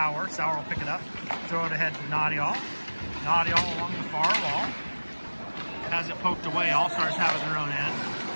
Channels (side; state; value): both; inverted; correlation -1.00